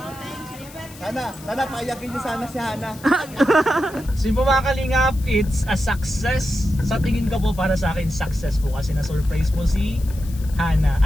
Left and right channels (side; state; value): left; noise; hiss, 20 dB below the sound